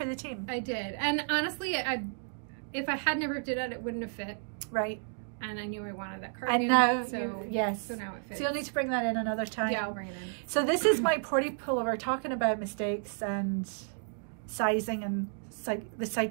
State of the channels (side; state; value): left; silent; 56 dB below the other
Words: the team. I did, and honestly, if I hadn't ripped it out, it wouldn't have fit. Right. And I knew I wanted that cardigan. And now, yes. So now it fits. So you'll need to bring that in another time. Yeah, I'll bring it in. So this is my porty pullover, talking about mistakes and sizing and the